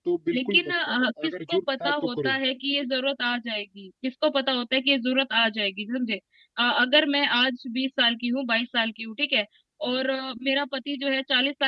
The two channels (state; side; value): identical; both; correlation 1.00